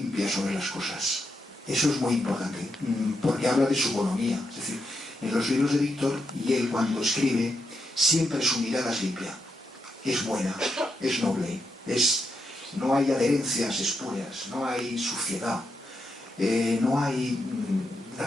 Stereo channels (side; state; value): both; normal; correlation 0.83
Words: sobre las cosas. Eso es muy importante, porque habla de su bonomía. Es decir, en los libros de Víctor, y él cuando escribe, siempre su mirada es limpia. Es buena, es noble, no hay adherencias espurias, no hay suciedad, no hay